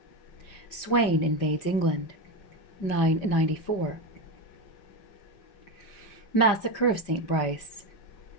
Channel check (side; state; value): right; late; 5.1 ms